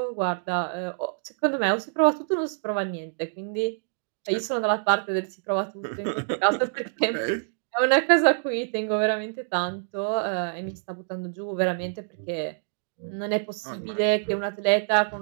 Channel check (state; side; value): silent; left; digital silence